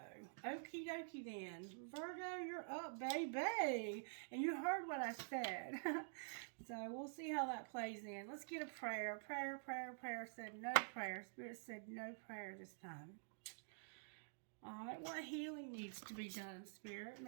Okie dokie then. Virgo, you're up, baby. And you heard what I said. So we'll see how that plays in. Let's get a prayer. Prayer said no prayer. Spirit said no prayer this time. Alright, what healing needs to be done, Spirit?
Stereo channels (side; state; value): left; silent; digital silence